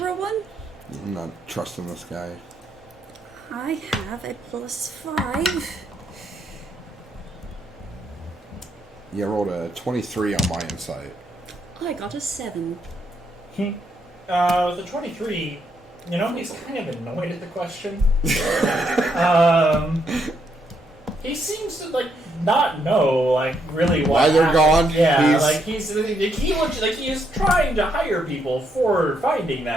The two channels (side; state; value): both; normal; correlation 0.76